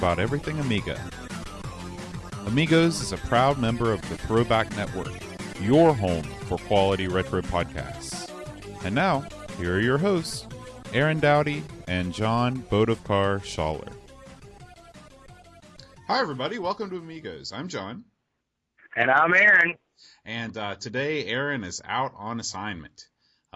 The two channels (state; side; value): identical; both; correlation 1.00